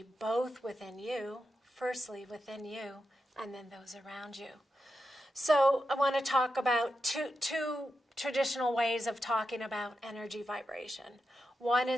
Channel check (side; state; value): both; normal; correlation 0.88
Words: both within you, firstly within you, and then those around you. So I want to talk about two traditional ways of talking about energy vibration. One